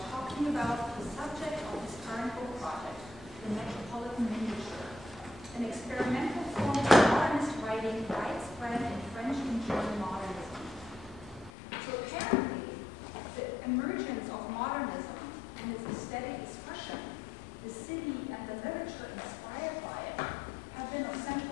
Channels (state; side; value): drops out; right; at 11.5 s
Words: talking about the subject of his current book project, the Metropolitan Miniature, an experimental form of modernist writing widespread in French and German modernism. So apparently, the emergence of modernism and its aesthetic expression, the city and the literature inspired by it, have been of